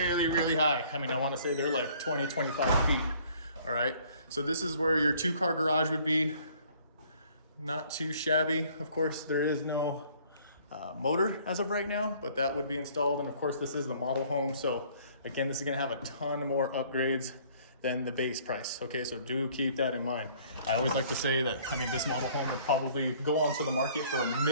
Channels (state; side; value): inverted; both; correlation -0.57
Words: really high. I mean, I want to say they're like 20, 25 feet. All right. So this is where your 2-car garage would be. not too shabby. Of course, there is no motor as of right now, but that would be installed. And of course, this is the model home. So again, this is gonna have a ton more upgrades than the base price. Okay, so do keep that in mind. I always like to say that, I mean, this model home would probably go onto the market for a